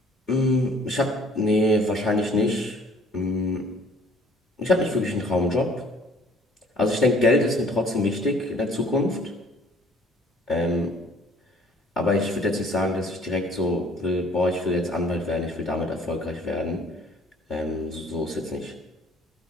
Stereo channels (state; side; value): normal; both; correlation 0.56